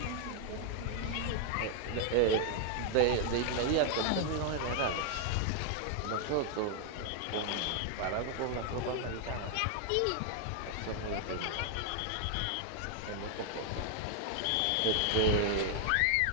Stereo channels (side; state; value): both; different; correlation 0.00